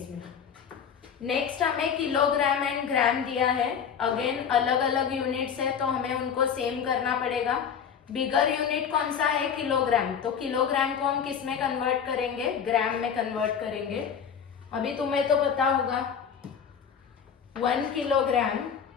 नेक्स्ट हमें किलोग्राम एंड ग्राम दिया है। अगेन अलग अलग यूनिट्स है तो हमें उनको सेम करना पड़ेगा। बिगर यूनिट कौन सा है किलोग्राम, तो किलोग्राम को हम किस में कन्वर्ट करेंगे ग्राम में कन्वर्ट करेंगे। अभी तुम्हें तो पता होगा 1 किलोग्राम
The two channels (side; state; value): right; quieter; 7.5 dB